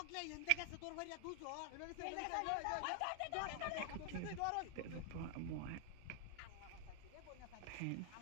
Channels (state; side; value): different; both; correlation 0.00